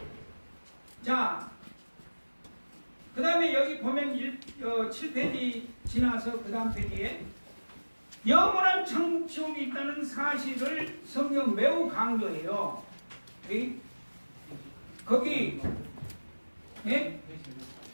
자, 그 다음에 여기 보면 7페이지 지나서 그 다음 페이지에 영원한 천국 지옥이 있다는 사실을 성경 매우 강조해요. 거기 예?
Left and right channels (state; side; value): inverted; both; correlation -1.00